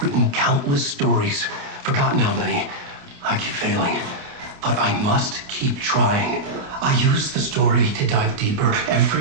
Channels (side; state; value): left; late; 28 ms